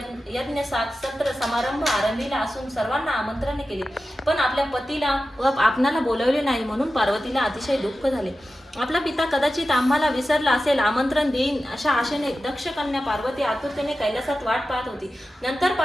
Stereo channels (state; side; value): normal; both; correlation 0.93